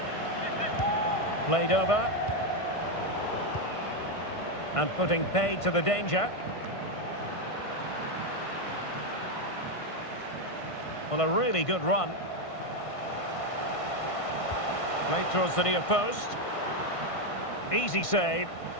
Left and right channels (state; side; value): late; right; 1.5 ms